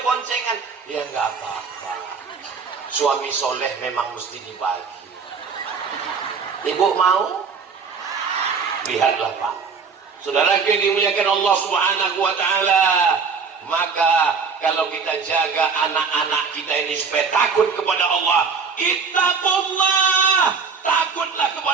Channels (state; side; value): quieter; left; 5.4 dB